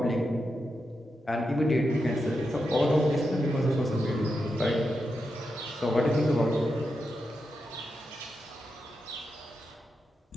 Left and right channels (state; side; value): normal; both; correlation 0.87